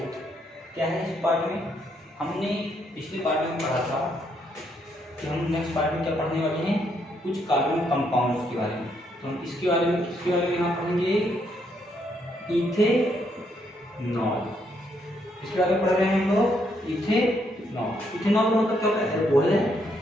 क्या है इस part में? हमने पिछले part में पढ़ा था कि हम नेक्स्ट पार्ट में क्या पढ़ने वाले हैं, कुछ कार्बन कंपाउंड्स के बारे में। तो हम इसके बारे में यहाँ पढ़ेंगे इथेनॉल। इसके बारे में पढ़ रहे हैं हम लोग इथेनॉल। इथेनॉल का मतलब क्या होता है? अल्कोहल है।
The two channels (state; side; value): normal; both; correlation 0.74